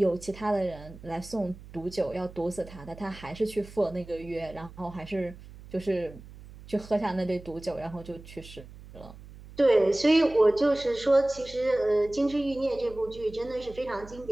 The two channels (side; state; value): right; noise; hum, 17 dB below the sound